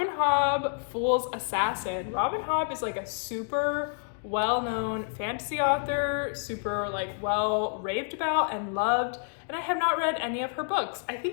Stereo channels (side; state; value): right; silent; digital silence